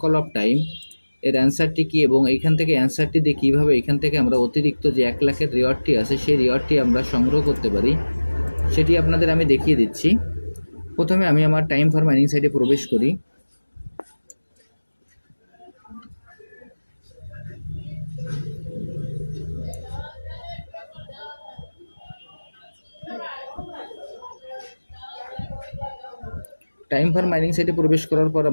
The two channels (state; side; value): inverted; both; correlation -1.00